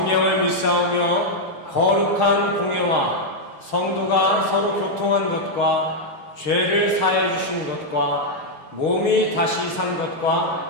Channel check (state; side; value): late; right; 6.4 ms